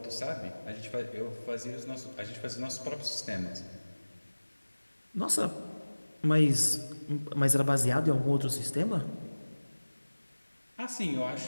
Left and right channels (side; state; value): both; inverted; correlation -1.00